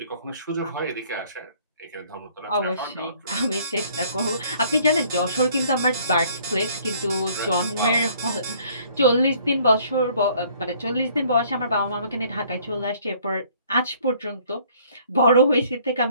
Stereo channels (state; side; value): inverted; both; correlation -0.59